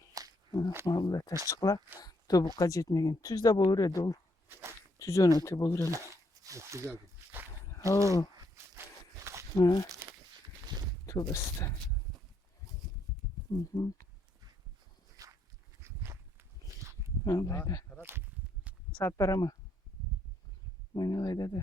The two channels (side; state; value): both; normal; correlation 0.74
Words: Vallahi taşçıklar tobukka jetmegen. Tüz de bolur edi ol. Tüzön öte bolur ele. Güzel. Oo. Ha. Tövbesi de. Vallahi de. Saat para mı? Oynalayda